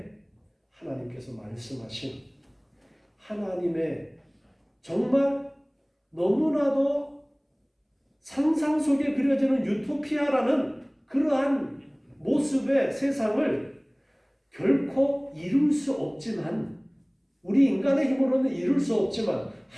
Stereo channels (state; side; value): identical; both; correlation 1.00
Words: 하나님께서 말씀하신 하나님의 정말 너무나도 상상 속에 그려지는 유토피아라는 그러한 모습의 세상을 결코 이룰 수 없지만, 우리 인간의 힘으로는 이룰 수 없지만